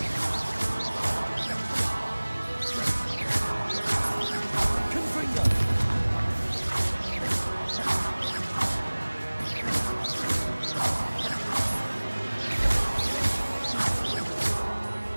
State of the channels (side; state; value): both; inverted; correlation -1.00